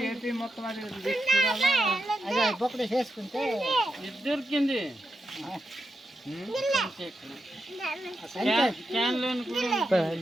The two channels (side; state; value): both; normal; correlation 0.87